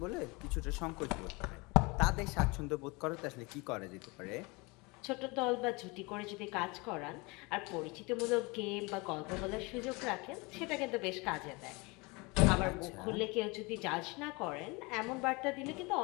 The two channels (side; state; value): right; quieter; 26.6 dB